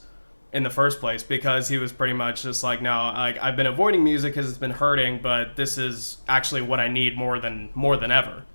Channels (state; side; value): inverted; both; correlation -1.00